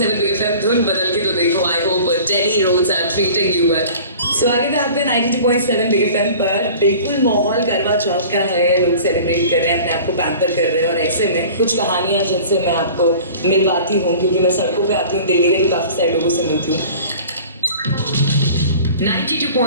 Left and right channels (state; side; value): inverted; both; correlation -0.43